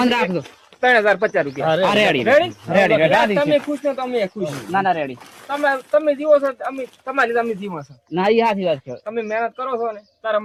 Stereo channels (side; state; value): both; identical; correlation 1.00